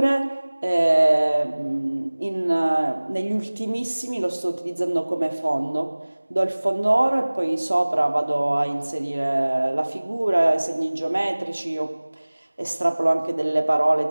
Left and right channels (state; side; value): inverted; both; correlation -1.00